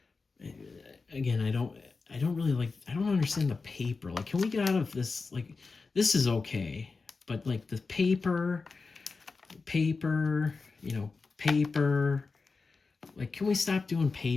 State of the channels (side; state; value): right; quieter; 4.3 dB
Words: again, I don't understand the paper. Like, can we get out of this? Like, this is okay, but like the paper, paper, like, can we stop doing